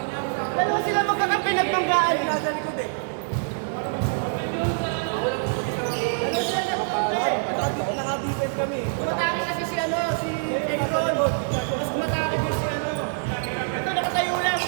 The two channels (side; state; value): left; silent; 62 dB below the other